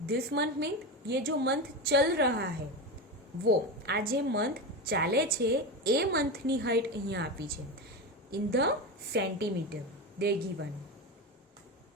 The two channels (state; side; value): normal; both; correlation 0.19